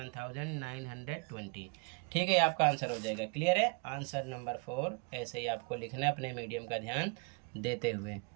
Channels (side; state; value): left; quieter; 33.4 dB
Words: ठीक है, आपका आंसर हो जाएगा। क्लियर है, आंसर नंबर 4 ऐसे ही आपको लिखना है अपने मीडियम का ध्यान देते हुए।